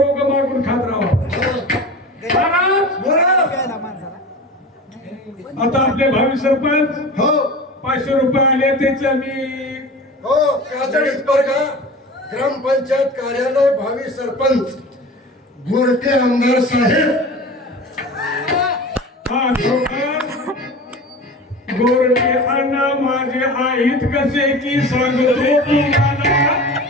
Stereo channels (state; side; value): normal; both; correlation 0.35